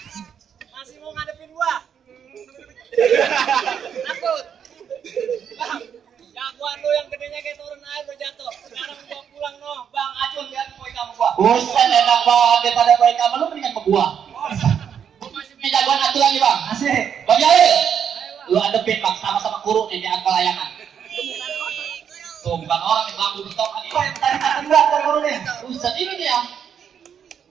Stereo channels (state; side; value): quieter; left; 8.0 dB